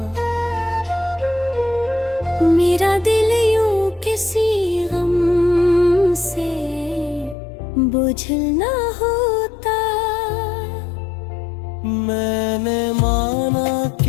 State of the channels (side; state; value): right; drops out; at 7.4 s